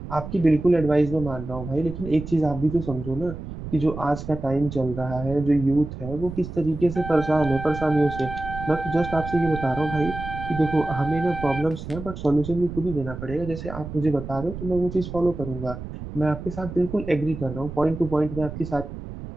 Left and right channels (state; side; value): noise; right; rumble, 9 dB below the sound